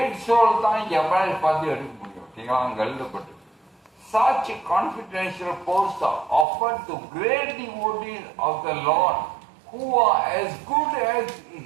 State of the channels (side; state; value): left; drops out; at 6.5 s